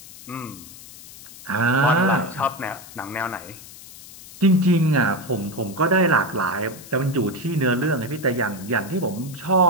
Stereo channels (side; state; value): left; noise; hiss, 17 dB below the sound